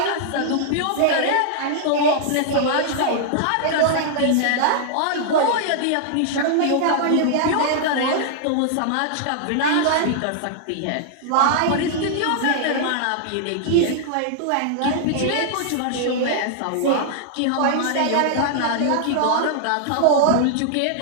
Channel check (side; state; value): both; different; correlation -0.01